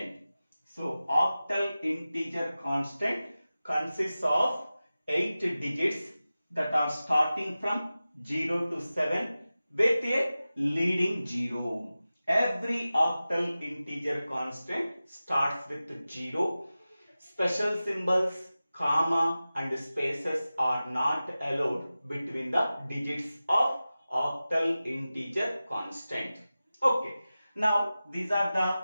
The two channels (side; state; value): both; inverted; correlation -0.95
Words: So octal integer constant consists of 8 digits that are starting from 0 to 7 with a leading 0. Every octal integer constant starts with 0. Special symbols, comma and spaces are not allowed between the digits of octal integer constant. Okay. Now, these are